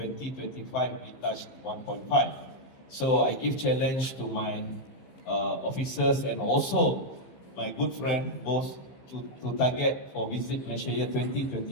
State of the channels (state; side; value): late; right; 15 ms